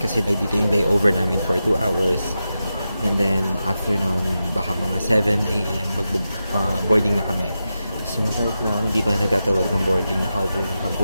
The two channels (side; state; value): both; inverted; correlation -0.90